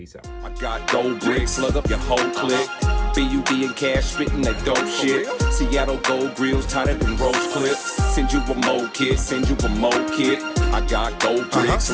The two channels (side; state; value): both; identical; correlation 1.00